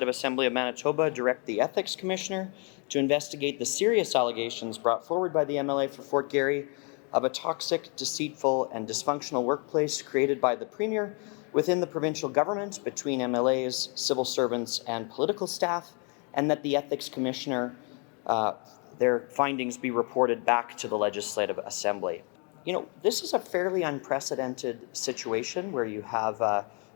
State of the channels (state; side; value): quieter; right; 35.8 dB